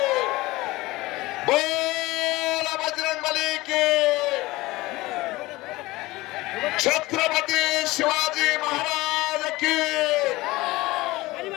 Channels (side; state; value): right; quieter; 19.9 dB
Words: बोला बजरंग बली की. छत्रपती शिवाजी महाराज की,